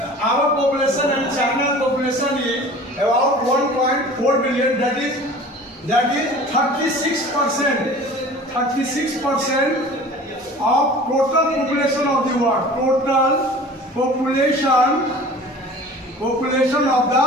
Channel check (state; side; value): normal; both; correlation 0.43